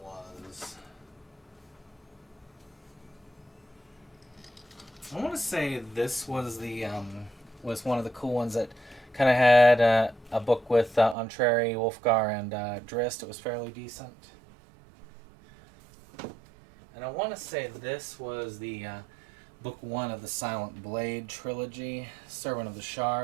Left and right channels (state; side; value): drops out; left; at 11.2 s